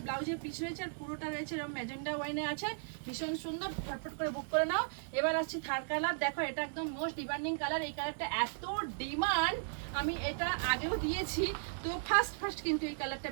ব্লাউজের পিস রয়েছে, আর পুরোটা রয়েছে এরকম ম্যাজেন্ডা ওয়াইনে আছে। ভীষণ সুন্দর, ঝটপট করে বুক করে নাও। এবার আসছি থার্ড কালার। দেখো এটা একদম মোস্ট ডিমান্ডিং কালার, এই কালারটা এত ডিমান্ড, আমি এটা আগেও দিয়েছি, তো ফার্স্ট কিন্তু এই কালারটা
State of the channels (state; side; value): silent; left; digital silence